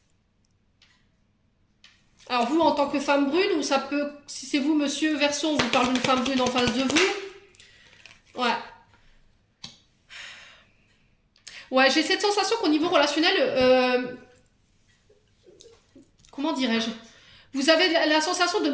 Alors, vous, en tant que femme brune, ou ça peut... Si c'est vous, monsieur Verseau, on vous parle d'une femme brune en face de vous. Ouais. Ouais, j'ai cette sensation qu'au niveau relationnel... comment dirais-je? Vous avez la sensation de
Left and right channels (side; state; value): both; identical; correlation 1.00